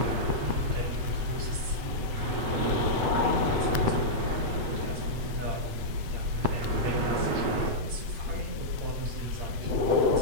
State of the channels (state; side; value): late; left; 7.9 ms